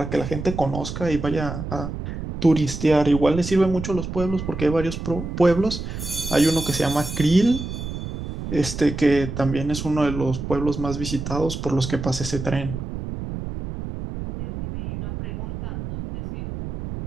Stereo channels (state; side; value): noise; right; rumble, 7 dB below the sound